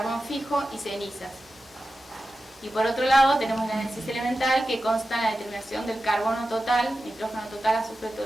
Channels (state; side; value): normal; both; correlation 0.93